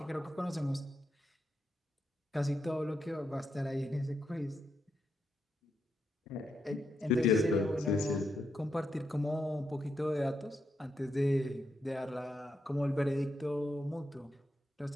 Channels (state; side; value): normal; both; correlation 0.82